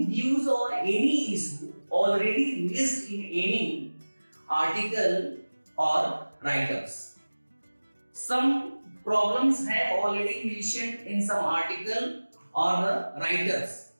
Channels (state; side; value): inverted; both; correlation -1.00